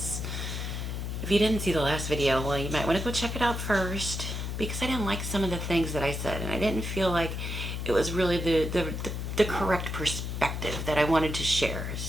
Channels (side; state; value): left; noise; hum, 4 dB below the sound